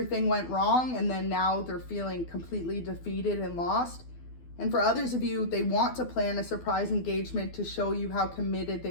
went wrong, and then now they're feeling completely defeated and lost. And for others of you, they want to plan a surprise engagement to show you how committed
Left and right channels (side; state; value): right; late; 12 ms